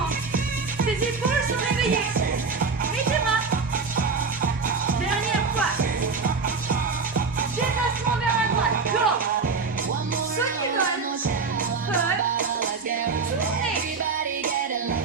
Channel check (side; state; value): left; quieter; 4.7 dB